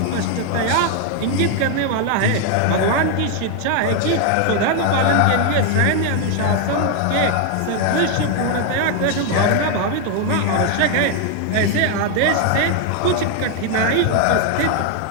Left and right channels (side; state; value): both; different; correlation 0.00